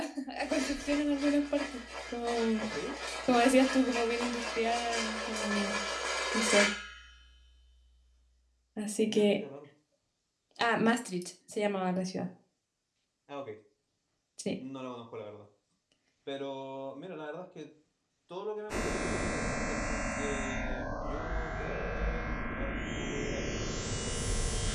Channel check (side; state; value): both; identical; correlation 1.00